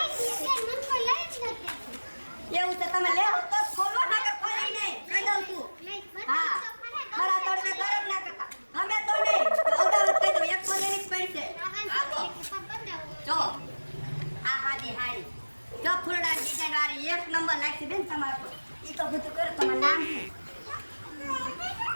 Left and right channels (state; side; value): inverted; both; correlation -1.00